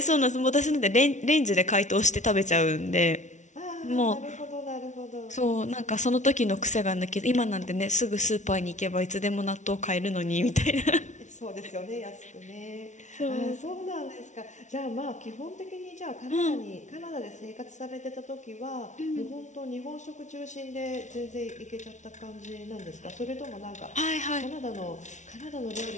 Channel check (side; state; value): right; late; 0.35 ms